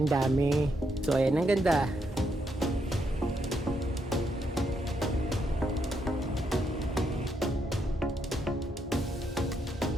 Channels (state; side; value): normal; both; correlation 0.78